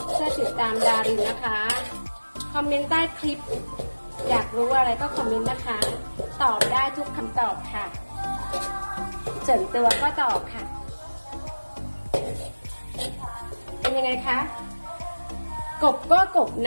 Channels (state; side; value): inverted; both; correlation -1.00